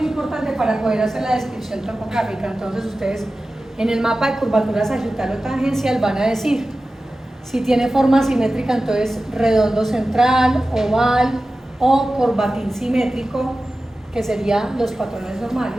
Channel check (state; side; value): normal; both; correlation 0.95